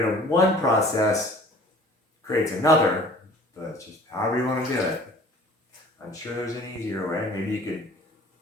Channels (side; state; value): both; normal; correlation 0.49